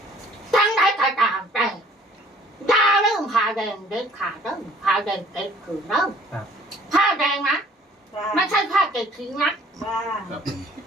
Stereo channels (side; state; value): both; normal; correlation 0.56